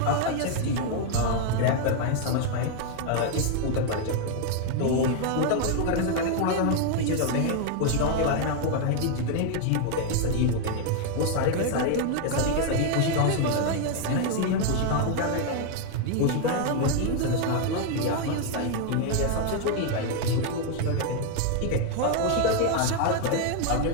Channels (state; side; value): different; both; correlation 0.00